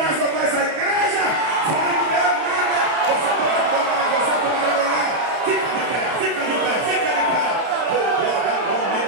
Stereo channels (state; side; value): late; left; 31 ms